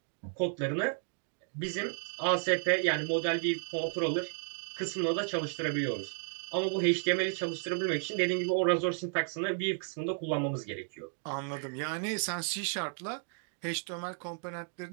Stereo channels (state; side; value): silent; left; 56 dB below the other